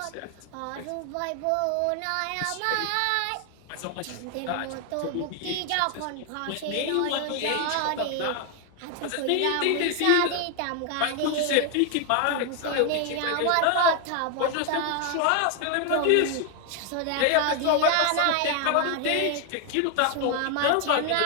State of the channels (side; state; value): both; different; correlation 0.01